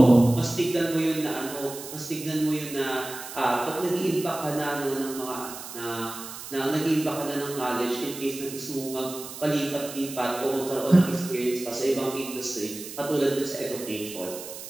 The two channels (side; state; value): right; noise; hiss, 11 dB below the sound